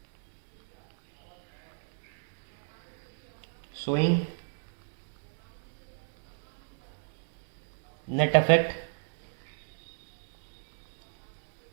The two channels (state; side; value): silent; left; digital silence